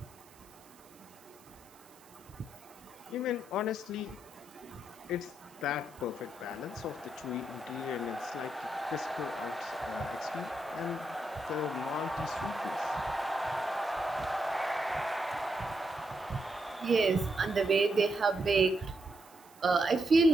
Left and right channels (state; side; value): noise; right; hiss, 26 dB below the sound